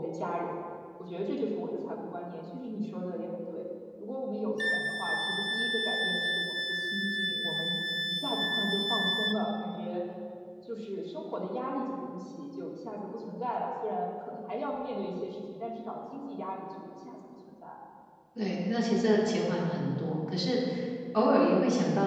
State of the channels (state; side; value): identical; both; correlation 1.00